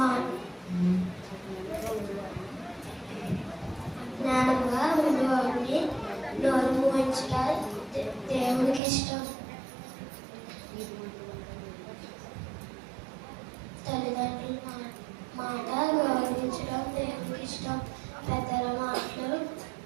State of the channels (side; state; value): left; drops out; at 8.8 s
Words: జ్ఞానంగా ఉండేవాడిని నోరు మూయించడం దేవునికి ఇష్టం. తల్లిదండ్రుల మాట గౌరవించడం దేవునికి ఇష్టం. పెద్దల మాటలు